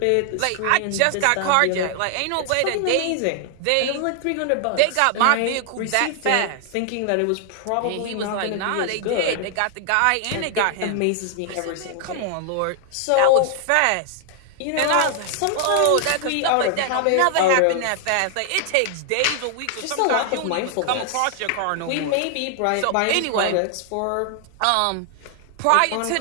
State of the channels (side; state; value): both; different; correlation 0.00